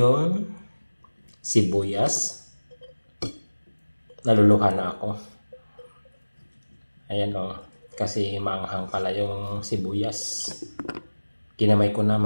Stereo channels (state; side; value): inverted; both; correlation -1.00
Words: sibuyas. Naluluha na ako. Ayan o. Kasi maanghang pala yung sibuyas. Kinamay ko na